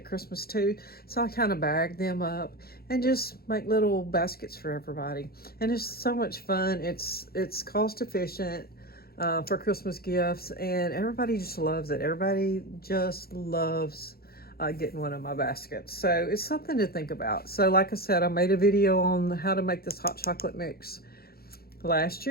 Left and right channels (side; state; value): right; late; 0.44 ms